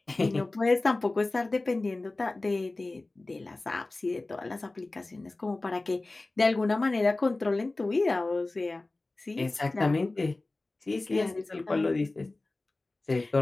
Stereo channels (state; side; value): quieter; right; 3.1 dB